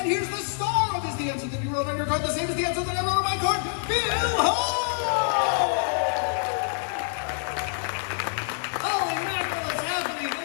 here's the star of Is the Answer That You Wrote on Your Card the Same as the Answer That I Wrote on My Card, Bill Hall! Holy mackerel, it's happening.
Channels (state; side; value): silent; right; digital silence